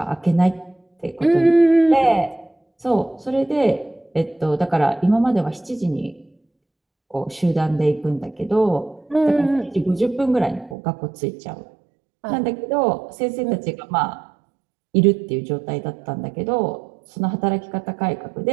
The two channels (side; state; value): left; drops out; at 10.8 s